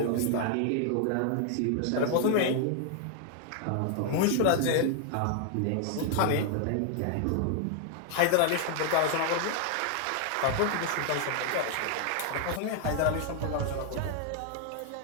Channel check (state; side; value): different; both; correlation 0.00